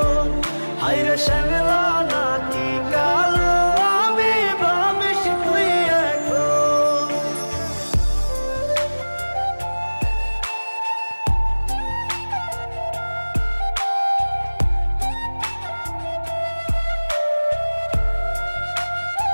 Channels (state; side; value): inverted; both; correlation -1.00